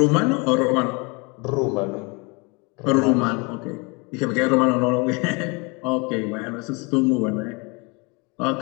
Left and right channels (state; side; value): quieter; right; 29.6 dB